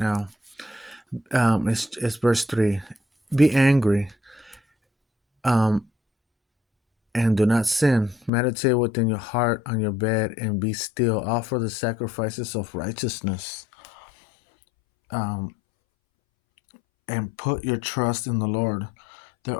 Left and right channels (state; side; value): drops out; right; at 8.3 s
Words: It's verse 3. Be angry, um, and do not sin. Meditate within your heart on your bed and be still. Offer the sacrifices of righteousness. And put your trust in the Lord. There